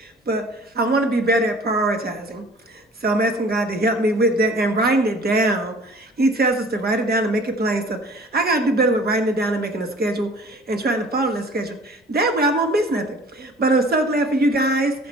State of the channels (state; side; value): normal; both; correlation 0.48